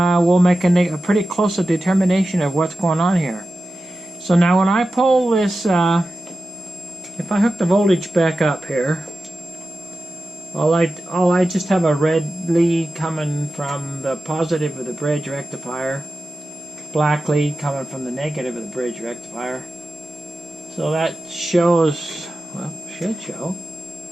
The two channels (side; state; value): both; normal; correlation 0.93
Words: we'll make a pretty close determination of what's going on here. So now when I pull this, if I hook the voltage back up here, I just have a red lead coming from the positive of the bridge rectifier, black lead coming from the negative of the bridge rectifier. So that shows, well, should show.